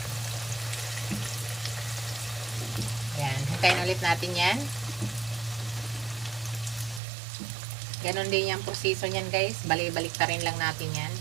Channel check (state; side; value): drops out; left; at 7.0 s